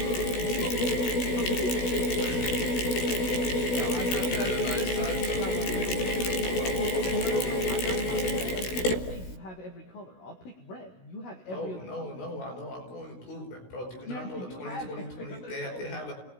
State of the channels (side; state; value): right; late; 16 ms